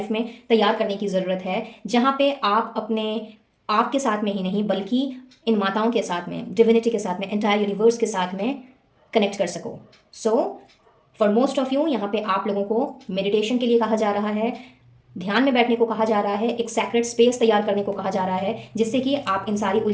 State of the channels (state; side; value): identical; both; correlation 1.00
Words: में तैयार करने की ज़रूरत है, जहाँ पे आप अपने आपके साथ में ही नहीं बल्कि इन माताओं के साथ में, डिविनिटी के साथ में, एंटायर यूनिवर्स के साथ में कनेक्ट कर सको। So for most of you यहाँ पे आप लोगों को मेडिटेशन के लिए कहा जा रहा है, ध्यान में बैठने को कहा जा रहा है, एक सैक्रेड स्पेस तैयार करने को कहा जा रहा है, जिससे कि आप इन सारी